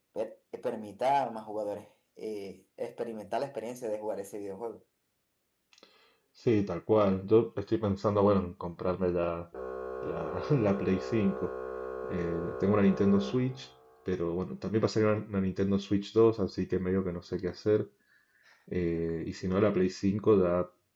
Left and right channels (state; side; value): identical; both; correlation 1.00